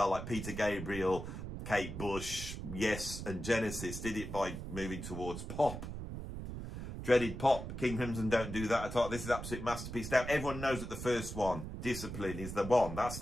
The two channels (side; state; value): right; noise; rumble, 7 dB below the sound